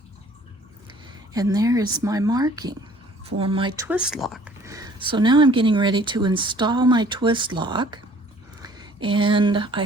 And there is my marking for my twist lock. So now I'm getting ready to install my twist lock, and I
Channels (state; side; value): normal; both; correlation 0.54